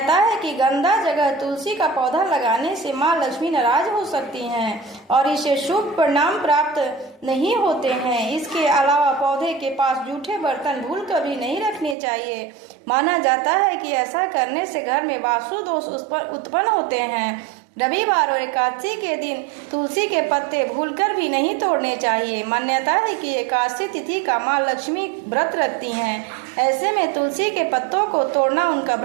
है कि गंदा जगह तुलसी का पौधा लगाने से माँ लक्ष्मी नाराज हो सकती हैं और इसे शुभ परिणाम प्राप्त नहीं होते हैं। इसके अलावा पौधे के पास जूठे बर्तन भूल कभी नहीं रखने चाहिए। माना जाता है कि ऐसा करने से घर में वास्तु दोष उत्पन्न होते हैं। रविवार और एकादशी के दिन तुलसी के पत्ते भूलकर भी नहीं तोड़ने चाहिए। मान्यता है कि एकादशी तिथि का माँ लक्ष्मी व्रत रखती हैं। ऐसे में तुलसी के पत्तों को तोड़ना उनका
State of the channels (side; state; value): left; drops out; at 12.0 s